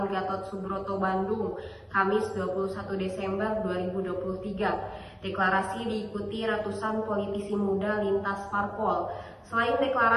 Gatot Subroto, Bandung, Kamis 21 Desember 2023. Deklarasi diikuti ratusan politisi muda lintas parpol. Selain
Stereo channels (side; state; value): both; identical; correlation 1.00